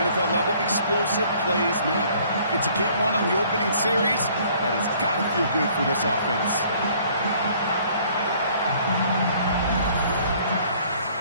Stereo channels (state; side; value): inverted; both; correlation -0.58